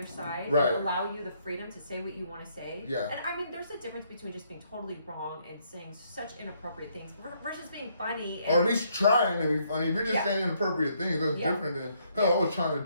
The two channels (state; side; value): inverted; both; correlation -0.71